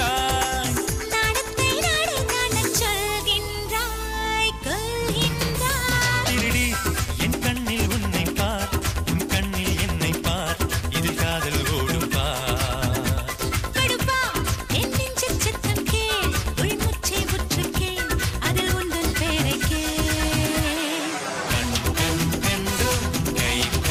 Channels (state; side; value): identical; both; correlation 1.00